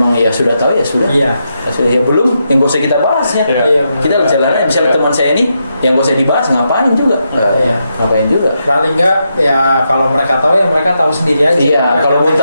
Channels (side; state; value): both; inverted; correlation -0.83